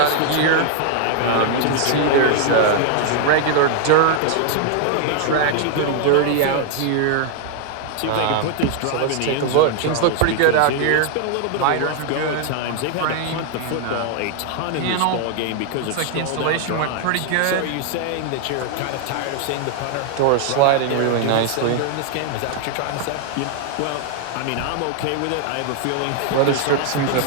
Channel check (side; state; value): both; different; correlation 0.00